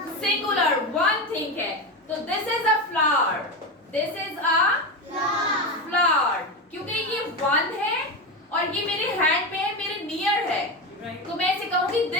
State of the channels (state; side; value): normal; both; correlation 0.18